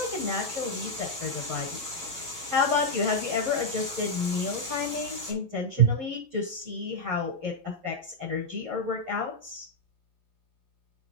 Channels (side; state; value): left; late; 11 ms